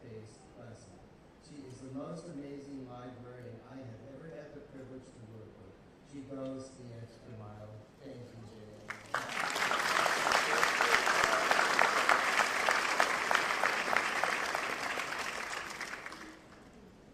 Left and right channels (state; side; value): identical; both; correlation 1.00